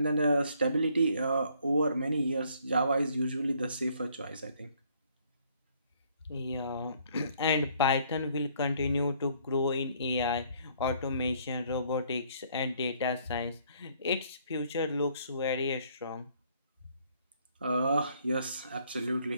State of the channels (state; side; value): inverted; both; correlation -0.64